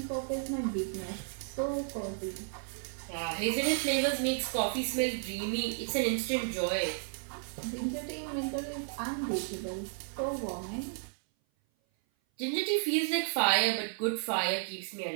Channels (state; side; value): silent; left; 56 dB below the other